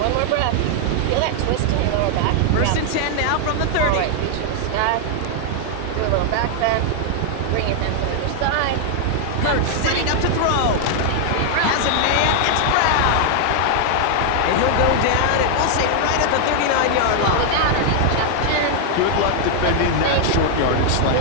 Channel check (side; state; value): both; different; correlation 0.00